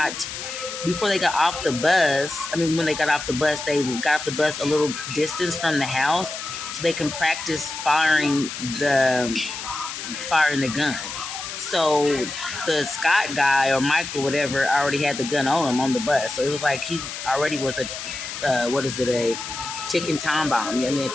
off the bus. I mean, when they got off the bus, they got off the bus a little distance from the house so they can practice firing the gun. So the Scott guy or Michael, whatever, already had the gun on him on the bus. So it was like he already was a ticking time bomb. A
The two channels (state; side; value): noise; left; hiss, 8 dB below the sound